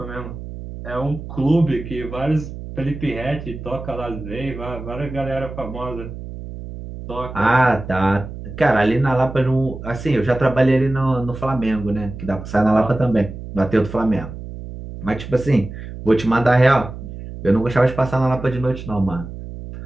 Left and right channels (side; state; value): right; noise; hum, 11 dB below the sound